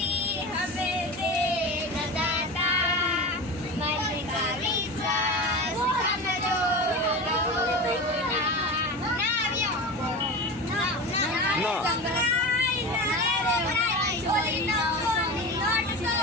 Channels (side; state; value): both; normal; correlation 0.28